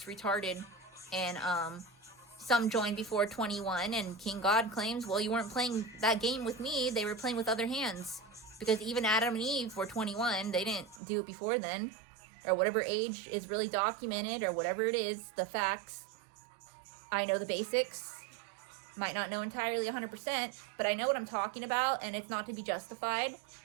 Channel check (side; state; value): left; drops out; at 11.0 s